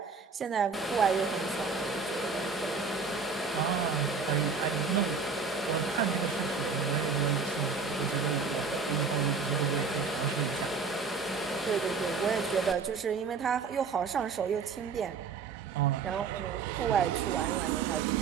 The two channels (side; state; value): left; quieter; 5.0 dB